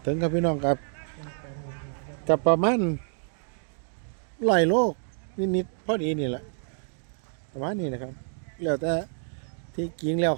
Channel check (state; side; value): silent; left; digital silence